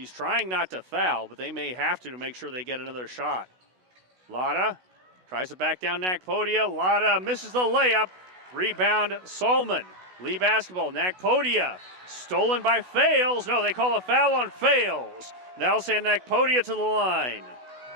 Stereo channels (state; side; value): late; left; 16 ms